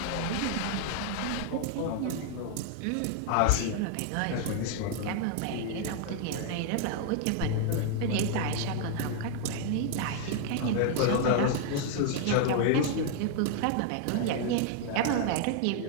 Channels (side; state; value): both; different; correlation 0.00